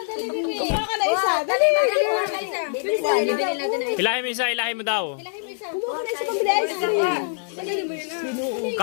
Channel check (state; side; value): silent; right; 56 dB below the other